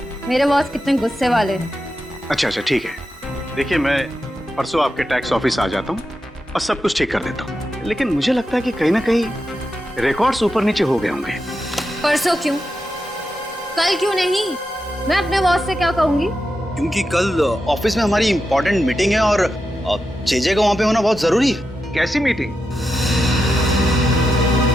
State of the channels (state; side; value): normal; both; correlation 0.88